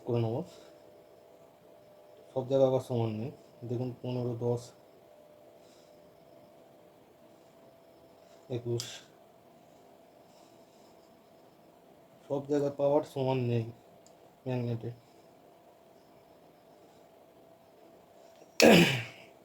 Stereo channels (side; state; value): both; identical; correlation 1.00